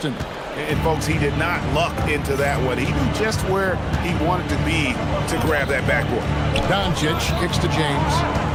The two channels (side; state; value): both; identical; correlation 1.00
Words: And folks, he did not luck into that one. He knew just where he wanted to be to grab that backboard. Doncic kicks to James.